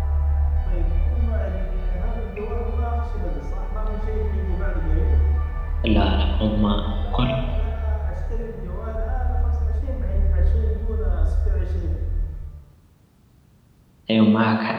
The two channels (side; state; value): both; identical; correlation 1.00